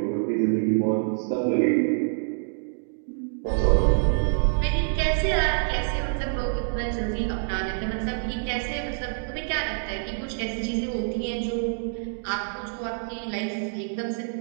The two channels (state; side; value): silent; left; digital silence